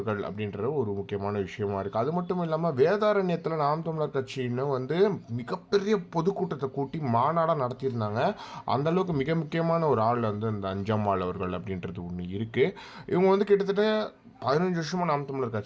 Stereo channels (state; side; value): identical; both; correlation 1.00